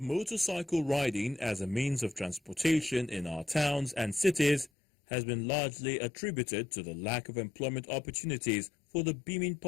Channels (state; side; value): drops out; right; at 4.7 s